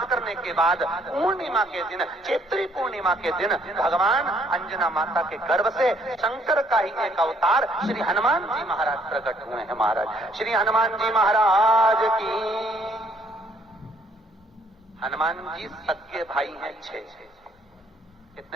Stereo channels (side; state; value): both; normal; correlation 0.65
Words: करने के बाद पूर्णिमा के दिन, चैत्री पूर्णिमा के दिन, भगवान अंजना माता के गर्भ से शंकर का ही एक अवतार श्री हनुमान जी महाराज प्रकट हुए हैं। महाराज श्री हनुमान जी महाराज की। हनुमान जी सगे भाई हैं 6।